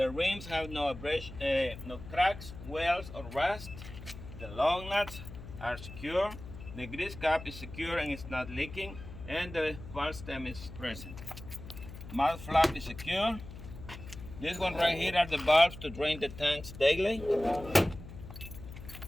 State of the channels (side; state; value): left; noise; hum, 13 dB below the sound